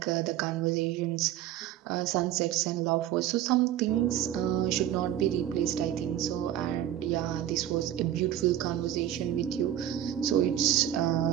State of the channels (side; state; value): left; quieter; 11.6 dB